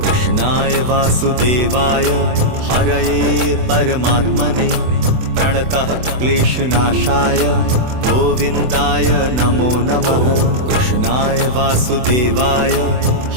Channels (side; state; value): left; late; 24 ms